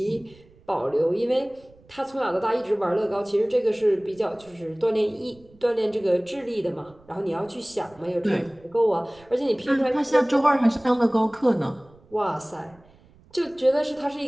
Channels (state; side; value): noise; right; rumble, 28 dB below the sound